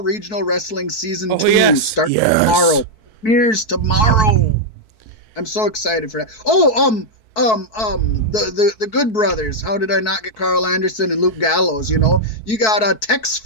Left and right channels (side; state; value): right; late; 4.6 ms